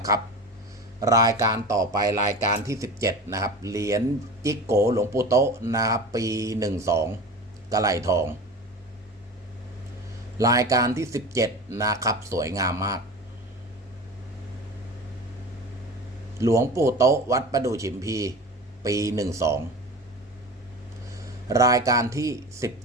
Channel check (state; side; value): normal; both; correlation 0.33